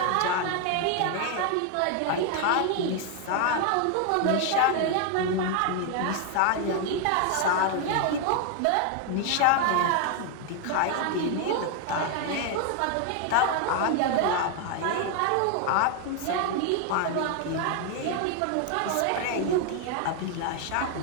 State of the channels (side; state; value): both; different; correlation 0.00